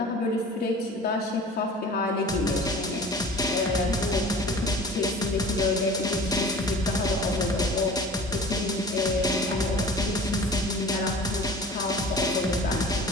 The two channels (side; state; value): both; normal; correlation 0.42